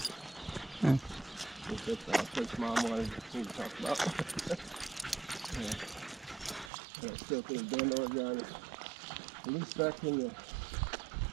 Hmm. That's the place Mom wanted me to talk about. Yeah. And I still think Bend, Oregon, at least back in the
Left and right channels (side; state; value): left; drops out; at 6.7 s